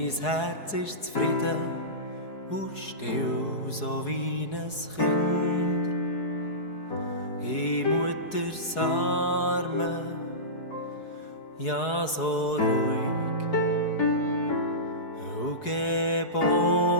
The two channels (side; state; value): right; late; 4.7 ms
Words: Herz ist zufrieden und still, so wie ein Kind. In Mutters Armen, ja so ruhig und